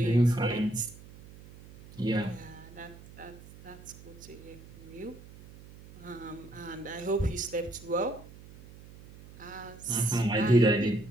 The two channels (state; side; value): noise; right; hum, 19 dB below the sound